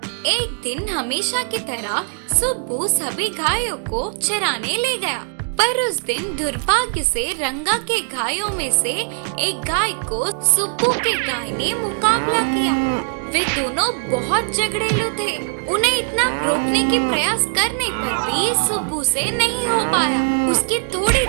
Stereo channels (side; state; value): left; silent; digital silence